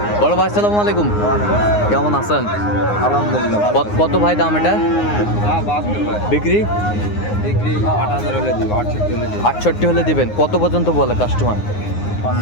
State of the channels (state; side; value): late; right; 9.6 ms